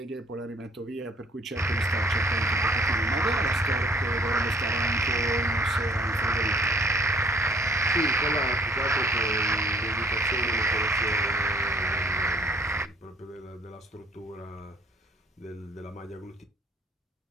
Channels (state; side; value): normal; both; correlation 0.58